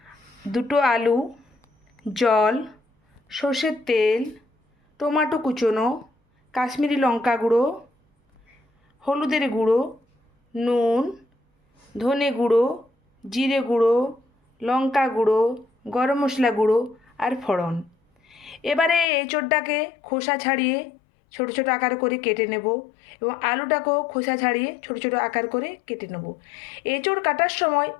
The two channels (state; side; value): drops out; right; at 19.1 s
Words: দুটো আলু, জল, সর্ষের তেল, টমেটো কুচোনো, কাশ্মীরি লঙ্কা গুঁড়ো, হলুদের গুঁড়ো, নুন, ধনে গুঁড়ো, জিরে গুঁড়ো, লঙ্কা গুঁড়ো, গরম মশলা গুঁড়ো আর ফোড়ন। এবারে এঁচোড়টাকে খোসা ছাড়িয়ে ছোট ছোট আকার করে কেটে নেব এবং আলুটাকেও খোসা ছাড়িয়ে ছোট ছোট আকার করে কেটে নেব। এঁচোড় কাটার সময়